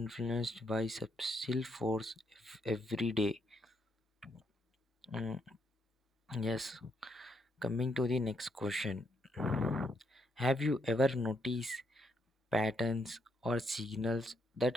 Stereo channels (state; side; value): normal; both; correlation 0.75